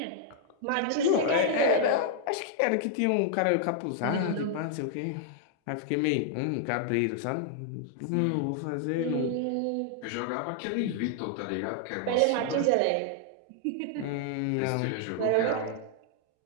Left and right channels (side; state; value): both; different; correlation -0.01